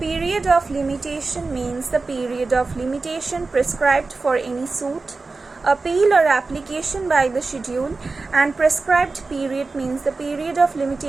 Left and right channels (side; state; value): left; quieter; 3.8 dB